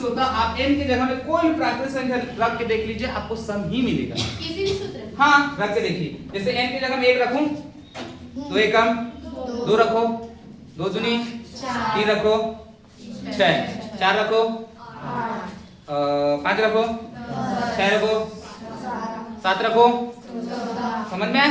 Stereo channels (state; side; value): identical; both; correlation 1.00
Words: होता। आप n की जगह में कोई भी प्राकृत संख्या रख के देख लीजिए, आपको सम ही मिलेगा। किसी भी सूत्र? हाँ, रख के देखिए। जैसे n की जगह में 1 रखूं, 2 एकम 2 रखो, 2 दूनी 3 रखो, 6 4 रखो, 5 रखो, 6 रखो, 7 रखो। समझ में